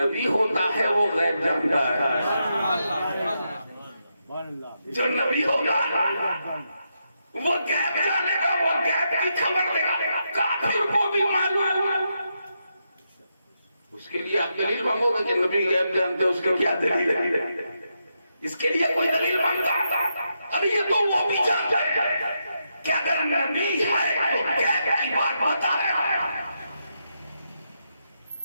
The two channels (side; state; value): both; inverted; correlation -0.83